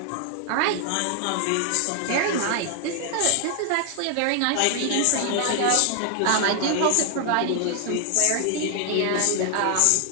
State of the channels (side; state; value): both; different; correlation 0.00